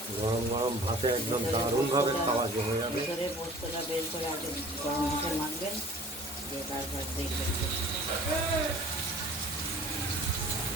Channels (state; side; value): normal; both; correlation 0.47